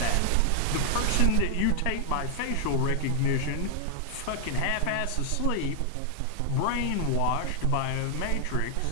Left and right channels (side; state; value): both; different; correlation 0.00